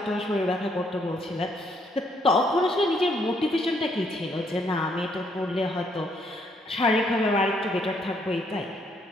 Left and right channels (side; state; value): both; normal; correlation 0.71